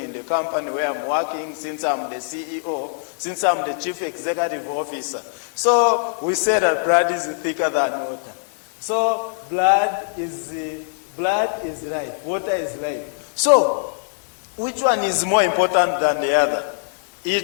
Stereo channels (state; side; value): silent; right; digital silence